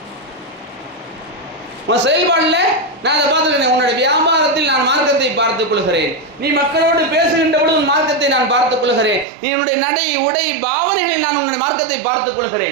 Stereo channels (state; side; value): drops out; left; at 9.2 s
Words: உன் செயல்பாடுல நான் அதை பார்த்துக்கிறேன். உன்னுடைய வியாபாரத்தில் நான் மார்க்கத்தை பார்த்துக் கொள்கிறேன், நீ மக்களோடு பேசுகின்ற பொழுது உன் மார்க்கத்தை நான் பார்த்துக் கொள்கிறேன், நீ உன்னுடைய நடை உடை பாவனைகளில் நான் உன்னுடைய மார்க்கத்தை பார்த்துக்